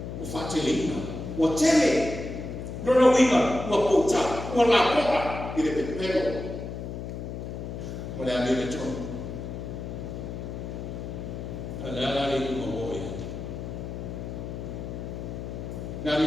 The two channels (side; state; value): left; noise; hum, 7 dB below the sound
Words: Wafatele ina. Watele. Rona winga, ua puta, ua la poa, i le pepero. Ma le ame le tonu. A le ala le kuma moe. Nari,